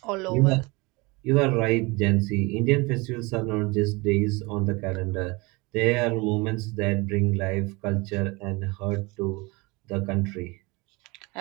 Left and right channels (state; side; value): quieter; left; 25.4 dB